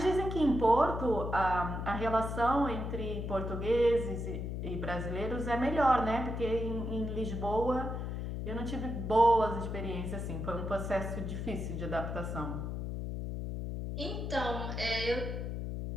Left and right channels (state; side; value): noise; left; hum, 4 dB below the sound